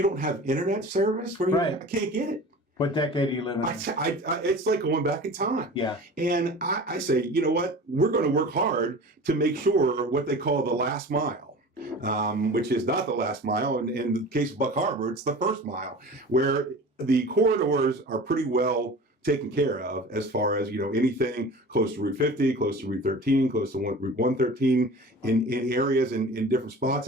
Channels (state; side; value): normal; both; correlation 0.38